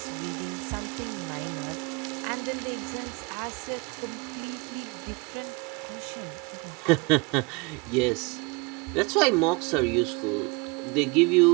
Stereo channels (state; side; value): quieter; left; 27.7 dB